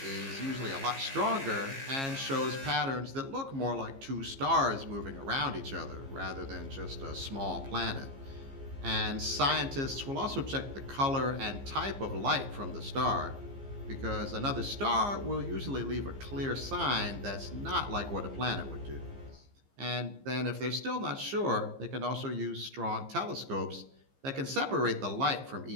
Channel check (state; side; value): late; left; 15 ms